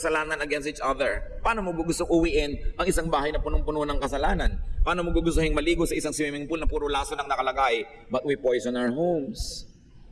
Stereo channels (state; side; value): identical; both; correlation 1.00